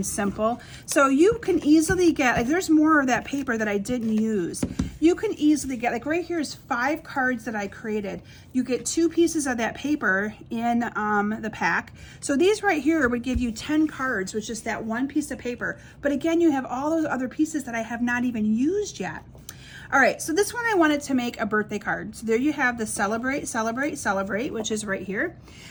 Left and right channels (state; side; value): identical; both; correlation 1.00